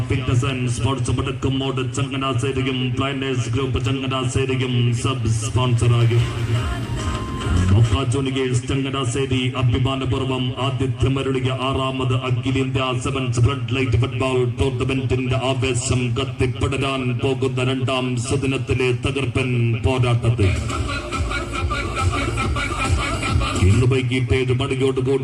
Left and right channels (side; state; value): both; identical; correlation 1.00